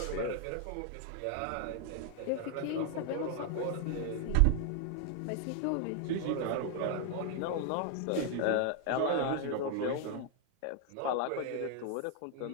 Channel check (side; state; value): both; different; correlation 0.00